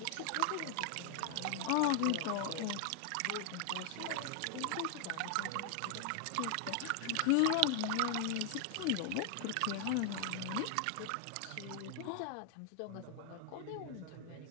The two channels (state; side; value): different; both; correlation 0.00